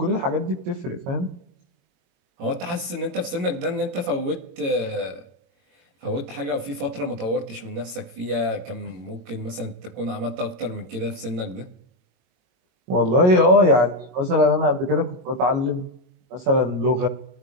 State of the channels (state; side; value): late; left; 22 ms